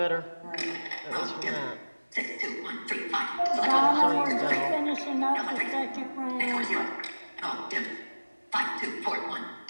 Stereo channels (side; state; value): both; inverted; correlation -1.00